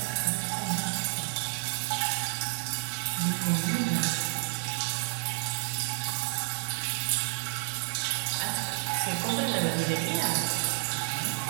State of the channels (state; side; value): silent; left; 58 dB below the other